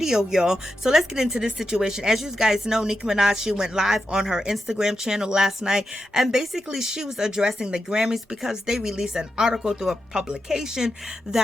y'all. So let's get into this situation. As you guys know, Nicki Minaj, she went live on her Instagram channel last night, and basically she was addressing the Grammys because they released an article through a publication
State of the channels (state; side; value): normal; both; correlation 0.87